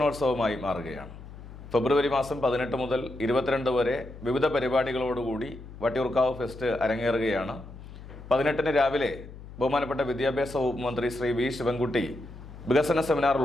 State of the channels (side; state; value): left; noise; hum, 15 dB below the sound